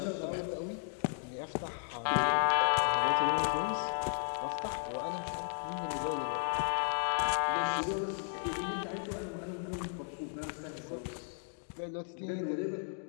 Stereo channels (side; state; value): right; silent; digital silence